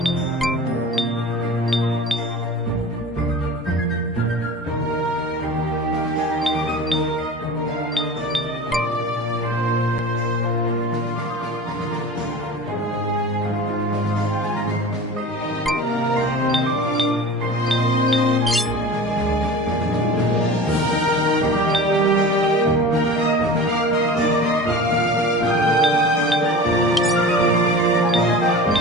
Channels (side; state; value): both; normal; correlation 0.36